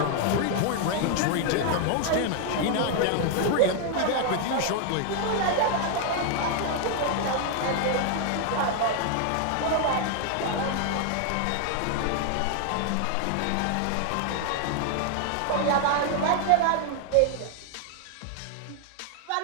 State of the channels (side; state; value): both; different; correlation 0.00